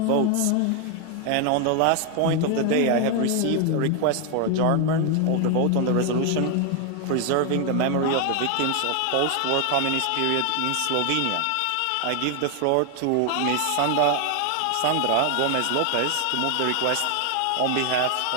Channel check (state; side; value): different; both; correlation 0.01